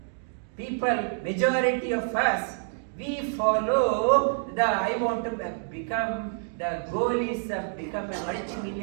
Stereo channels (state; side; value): silent; left; digital silence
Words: People, majority of us, we follow I want to become, the goal is to become a